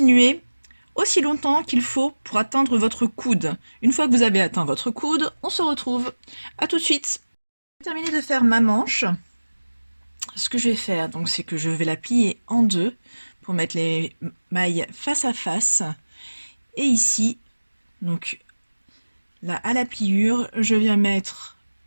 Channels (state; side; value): inverted; both; correlation -1.00